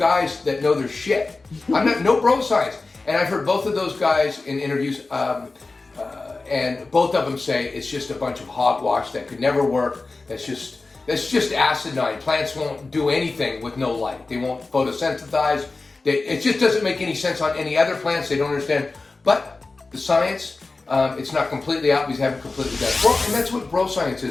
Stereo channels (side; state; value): right; quieter; 3.6 dB